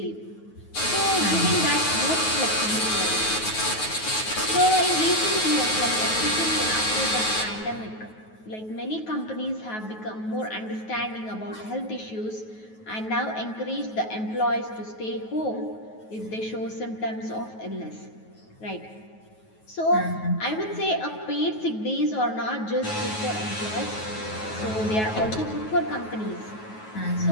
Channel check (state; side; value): late; right; 9.3 ms